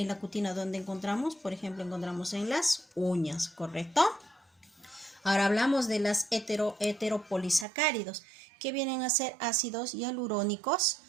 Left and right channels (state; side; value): drops out; left; at 7.7 s